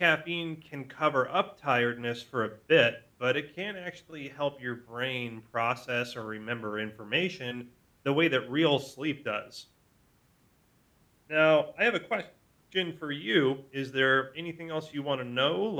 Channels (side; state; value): both; identical; correlation 1.00